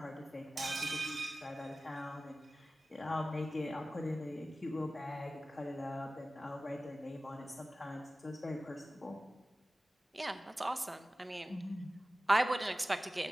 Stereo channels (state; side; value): normal; both; correlation 0.96